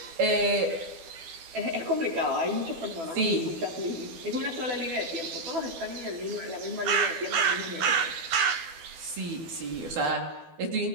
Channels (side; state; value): left; late; 12 ms